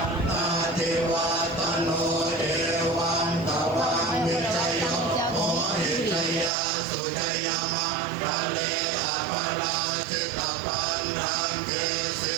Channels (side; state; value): left; drops out; at 6.5 s